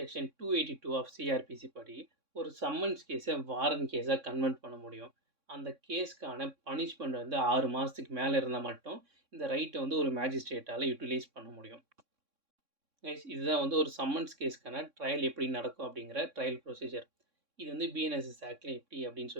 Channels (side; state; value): left; late; 3.6 ms